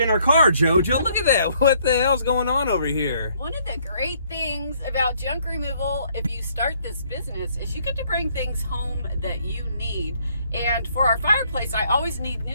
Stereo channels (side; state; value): both; inverted; correlation -0.66